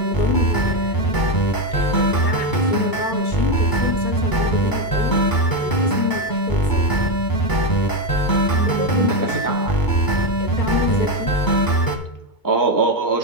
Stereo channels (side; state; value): right; late; 2.2 ms